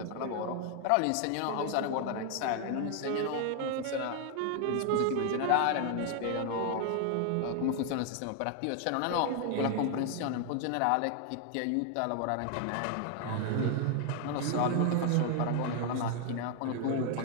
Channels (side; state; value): both; different; correlation 0.00